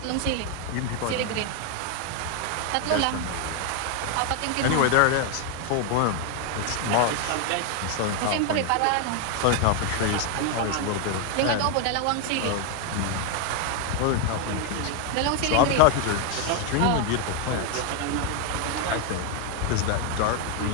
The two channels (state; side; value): different; both; correlation 0.01